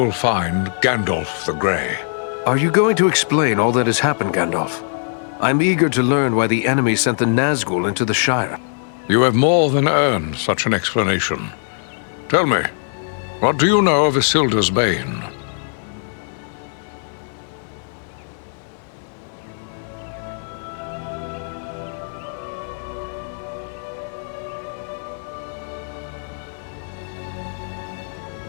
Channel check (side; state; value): right; silent; 65 dB below the other